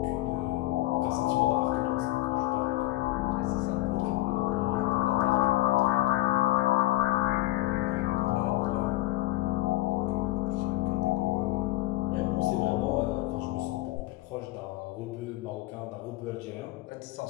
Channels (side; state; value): right; quieter; 18.0 dB